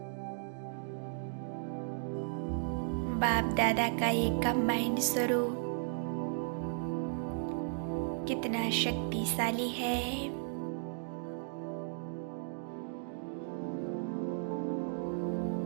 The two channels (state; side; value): silent; left; digital silence